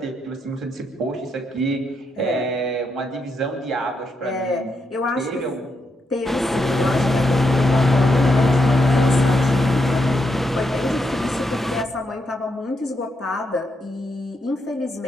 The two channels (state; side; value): normal; both; correlation 0.81